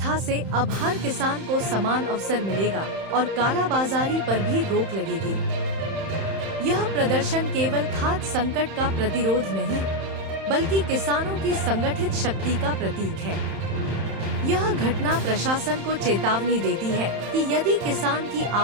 से अब हर किसान को समान अवसर मिलेगा और कालाबाजारी पर भी रोक लगेगी। यह प्रदर्शन केवल खाद संकट का प्रतिरोध नहीं, बल्कि किसानों की संगठित शक्ति का प्रतीक है। यह घटना प्रशासन को चेतावनी देती है कि यदि किसान की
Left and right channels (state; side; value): late; left; 31 ms